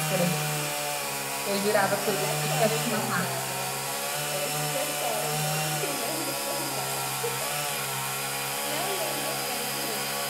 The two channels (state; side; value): identical; both; correlation 1.00